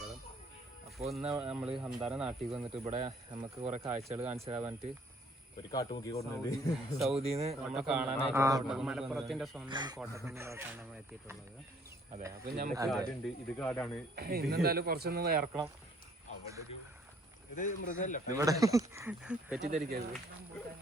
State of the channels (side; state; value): both; normal; correlation 0.61